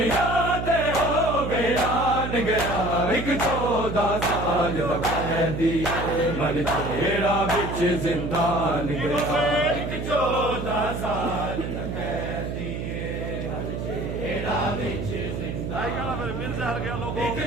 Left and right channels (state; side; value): noise; right; hum, 4 dB below the sound